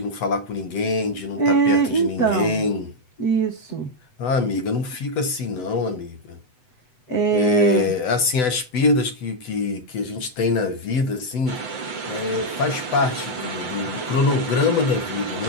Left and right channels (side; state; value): right; late; 8.0 ms